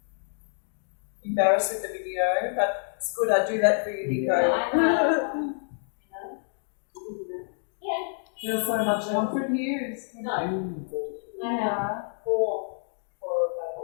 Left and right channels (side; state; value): right; silent; digital silence